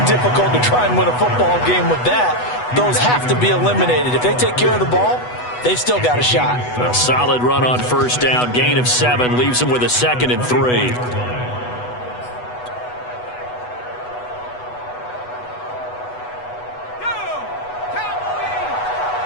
difficult to try and win a football game with that. Those have to be eliminated. If they take care of the ball, they've still got a shot. A solid run on first down. Gain of 7 leaves them with a 2nd and 3.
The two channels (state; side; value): late; right; 8.1 ms